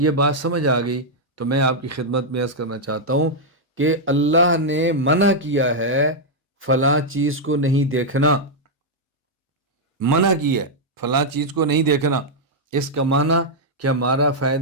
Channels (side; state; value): both; normal; correlation -0.04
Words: بات سمجھ آ گئی تو میں آپ کی خدمت میں عرض کرنا چاہتا ہوں کہ اللہ نے منع کیا ہے فلاں چیز کو نہیں دیکھنا، منع کی ہے فلاں چیز کو نہیں دیکھنا، اس کا معنی کہ ہمارا